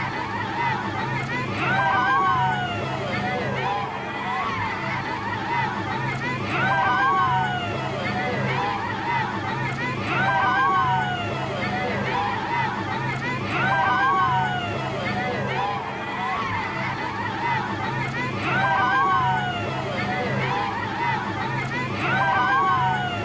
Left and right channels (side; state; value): both; identical; correlation 1.00